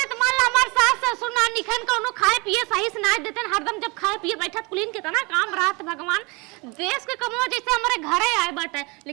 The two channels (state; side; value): quieter; left; 27.7 dB